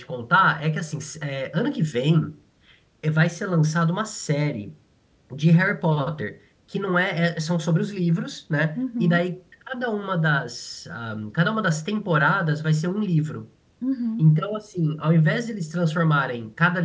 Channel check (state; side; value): identical; both; correlation 1.00